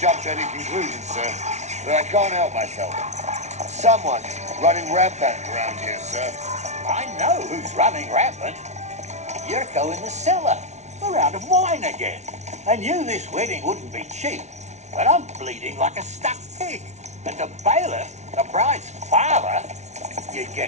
to any conclusions, sir, but I can't help myself. Someone's running rampant around here, sir. I know who's running rampant. Yurko in the cellar. We're out of wine again. I knew this wedding wouldn't be cheap, but I'm bleeding like a stuck pig. And the bailiff, the bride's father, you'd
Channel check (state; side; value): late; left; 0.32 ms